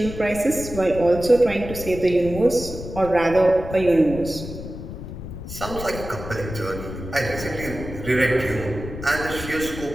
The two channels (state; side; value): noise; left; rumble, 10 dB below the sound